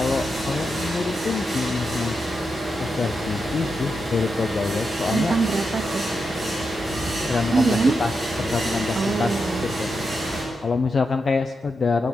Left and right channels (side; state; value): both; normal; correlation 0.86